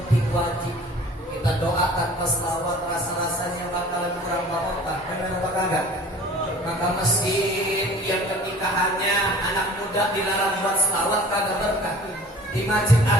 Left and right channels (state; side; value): normal; both; correlation 0.46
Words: wajib. Kita doakan pas selawat, rasa-rasanya bakalan kurang barokah. Benar apa kagak? Maka masjid yang ketika hanya anak muda dilarang buat selawat kagak berkah. Di Masjid